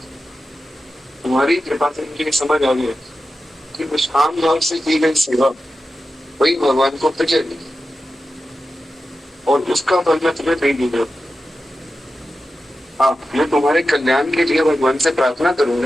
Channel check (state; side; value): normal; both; correlation 0.92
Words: तुम्हारी कृपा से मुझे समझ आ गया कि निष्काम भाव से की गई सेवा वही भगवान को प्रिय है, और उसका फल मैं तुम्हें नहीं दूंगा। हाँ, मैं तुम्हारे कल्याण के लिए भगवान से प्रार्थना